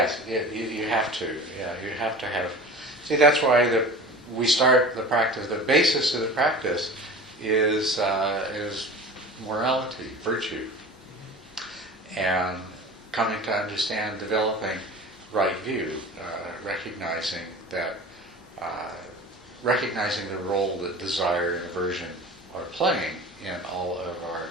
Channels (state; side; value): normal; both; correlation 0.37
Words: you have to. Yeah, you have to have. See, that's why we start the practice. The basis of the practice is morality, virtue, and coming to understand, developing right view, recognizing the role that desire and aversion are playing in all of our